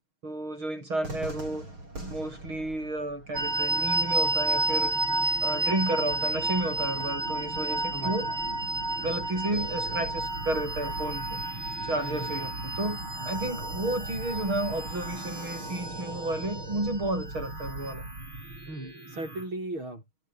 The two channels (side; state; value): left; late; 6.4 ms